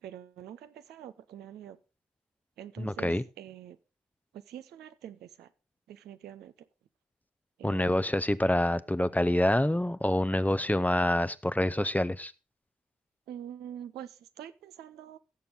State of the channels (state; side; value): normal; both; correlation 0.93